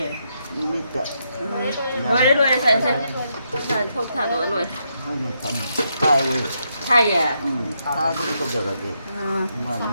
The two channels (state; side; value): inverted; both; correlation -0.80